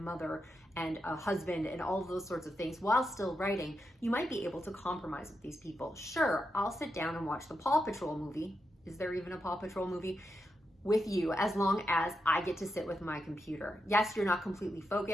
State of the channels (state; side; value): normal; both; correlation 0.86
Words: and a husband and all of those sorts of things while still writing. You might be able to compromise with these people. Sure, I'll sit down and watch the Paw Patrol movie. Is there even a Paw Patrol movie? With you, as long as I get to sit with my computer. Yes, you're not completely